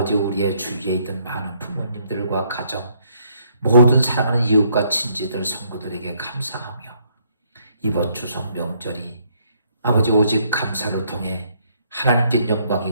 우리의 주위에 있던 많은 부모님들과 가정, 모든 사랑하는 이웃과 친지들, 성구들에게 감사하며, 이번 추석 명절이 아버지 오직 감사를 통해 하나님께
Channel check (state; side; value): inverted; both; correlation -0.69